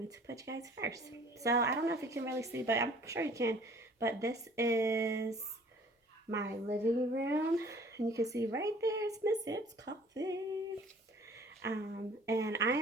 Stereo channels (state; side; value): normal; both; correlation 0.53